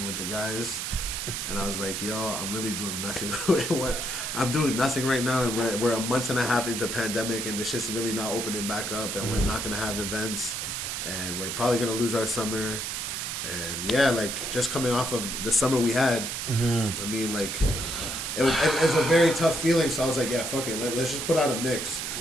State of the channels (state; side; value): noise; right; hiss, 3 dB below the sound